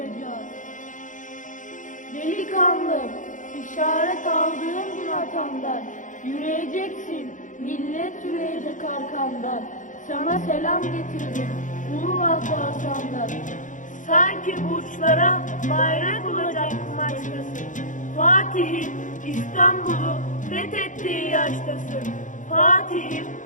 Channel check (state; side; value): late; right; 0.37 ms